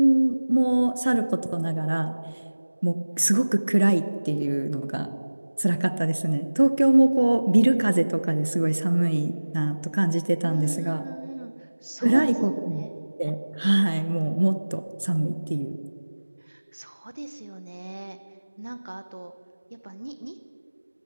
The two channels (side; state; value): both; inverted; correlation -1.00